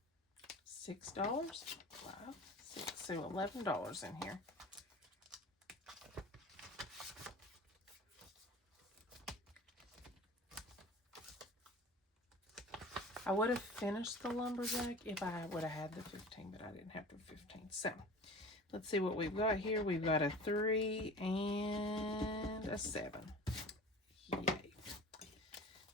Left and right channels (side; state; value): both; normal; correlation 0.39